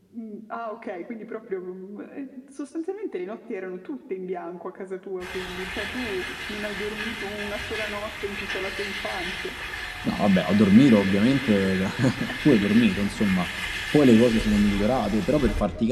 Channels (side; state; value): both; identical; correlation 1.00